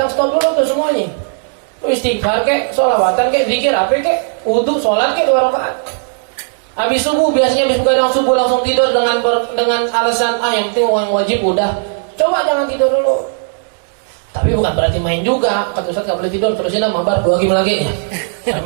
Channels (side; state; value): left; silent; digital silence